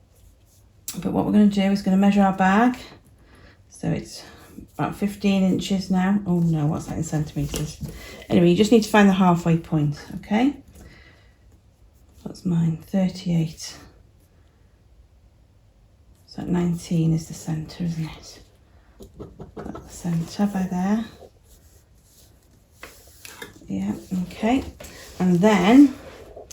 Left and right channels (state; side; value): identical; both; correlation 1.00